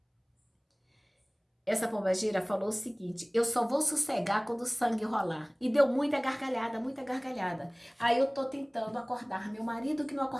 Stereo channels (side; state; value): both; identical; correlation 1.00